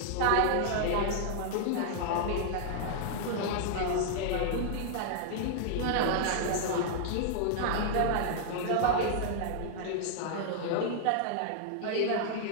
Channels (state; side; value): different; both; correlation -0.01